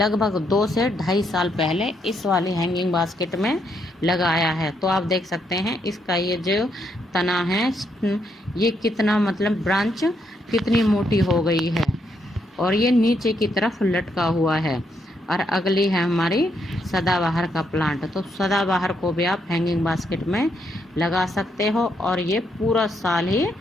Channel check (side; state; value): both; normal; correlation 0.77